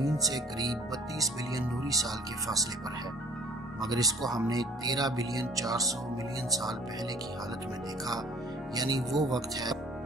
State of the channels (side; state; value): both; normal; correlation 0.52